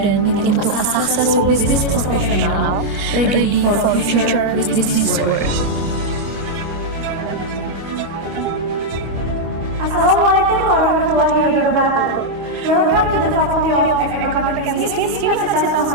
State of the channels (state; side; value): late; left; 25 ms